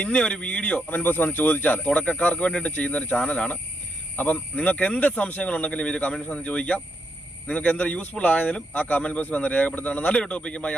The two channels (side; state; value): both; normal; correlation 0.80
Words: ഇന്ന ഒരു വീഡിയോ കമന്റ് ബോക്സ് വന്ന് ചോദിച്ചാൽ, തുടക്കക്കാർക്ക് വേണ്ടിയിട്ട് ചെയ്യുന്ന ഒരു ചാനലാണ്. അപ്പം നിങ്ങൾക്ക് എന്ത് സംശയങ്ങളുണ്ടെങ്കിലും ഈ കമന്റ് ബോക്സ് വന്ന് ചോദിക്കാം. നിങ്ങൾക്ക് എന്ത് യൂസ്ഫുൾ ആയതിലും ആ കമന്റ് ബോക്സ് വന്ന് രേഖപ്പെടുത്തുകയാണ്. നല്ലൊരു ടോപ്പിക്കുമായി